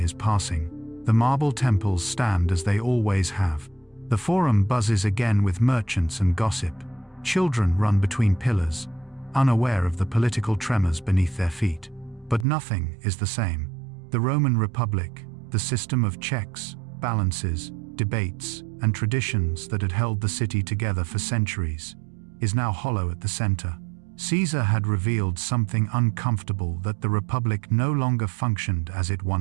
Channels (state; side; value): drops out; left; at 12.5 s